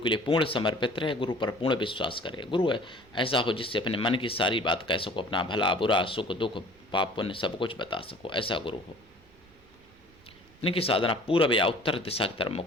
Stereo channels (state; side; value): noise; right; rumble, 28 dB below the sound